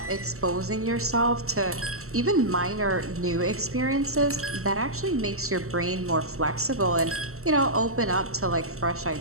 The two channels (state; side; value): late; left; 0.63 ms